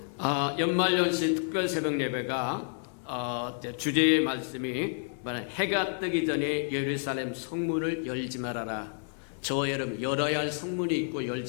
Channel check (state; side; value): silent; right; digital silence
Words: 연말연시 특별 새벽 예배가 주제의 말씀이 해가 뜨기 전에 예루살렘 성문을 열지 말아라. 저와 여러분 열어야 할 성문이 있고